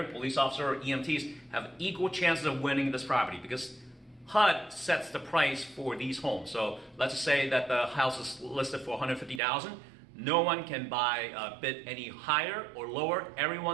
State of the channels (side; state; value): left; drops out; at 9.4 s